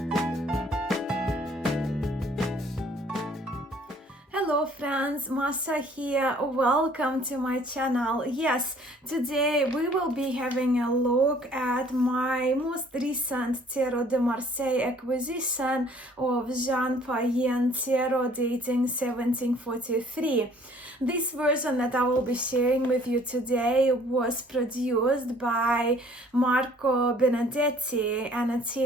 Hello friends, Masha here. Welcome to my channel. Yes, today we will be having a look at my most recent Tarot de Marseille acquisition of Jean Payen Tarot dating 1743. This version that I will be sharing with you today was produced by Marco Benedetti, an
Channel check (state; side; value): normal; both; correlation 0.57